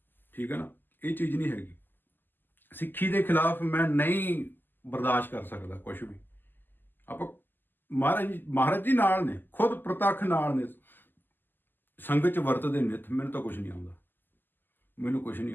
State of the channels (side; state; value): right; late; 0.091 ms